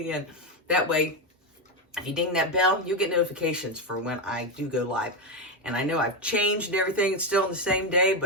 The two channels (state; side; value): normal; both; correlation 0.09